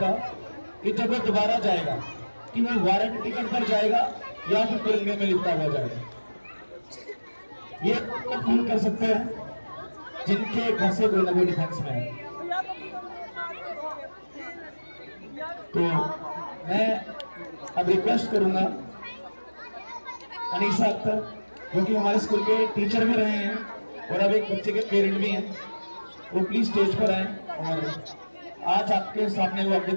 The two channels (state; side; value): inverted; both; correlation -1.00